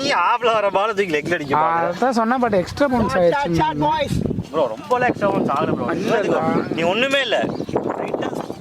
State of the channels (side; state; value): both; identical; correlation 1.00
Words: ஆப்ல வர பால் தூக்கி லெக்ல அடிக்க பாரு. அதான் சொன்னா, பட் எக்ஸ்ட்ரா பவுன்ஸ் ஆயிடுச்சு ப்ரோ. ரொம்ப எக்ஸ்ட்ரா பவுன்ஸ் ஆகல ப்ரோ. நீ ஒண்ணுமே இல்ல.